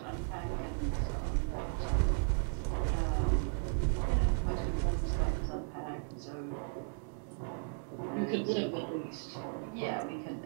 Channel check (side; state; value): left; silent; 54 dB below the other